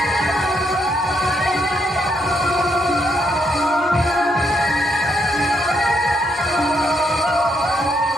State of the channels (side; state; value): both; normal; correlation 0.76